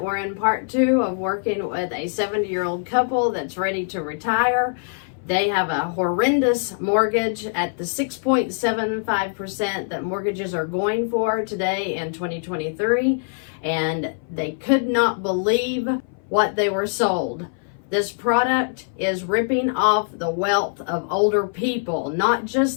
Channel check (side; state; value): right; silent; 60 dB below the other